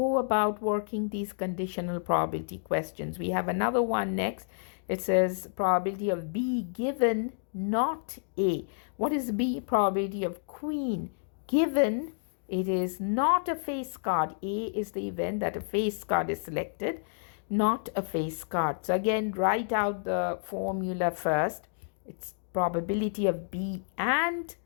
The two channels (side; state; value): right; silent; digital silence